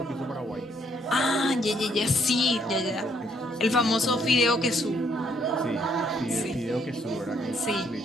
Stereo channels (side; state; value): both; normal; correlation 0.69